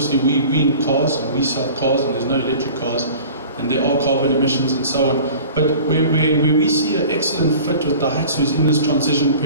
we in cars, and we sell cars, and there's no electric cars, and there are carbon emissions and so on. But where we see an excellent fit with Diahatsu is in this transition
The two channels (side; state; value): both; inverted; correlation -0.42